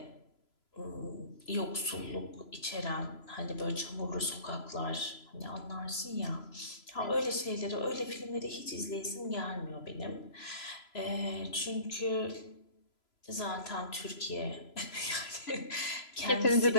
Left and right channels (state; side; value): late; right; 3.0 ms